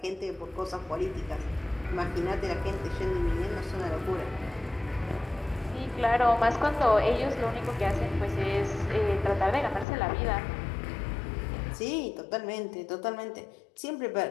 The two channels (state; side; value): drops out; right; at 9.9 s